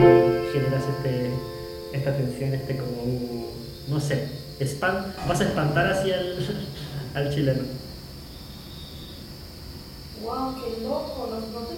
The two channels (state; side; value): identical; both; correlation 1.00